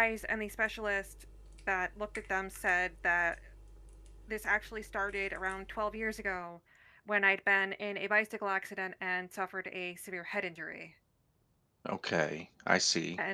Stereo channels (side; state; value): both; identical; correlation 1.00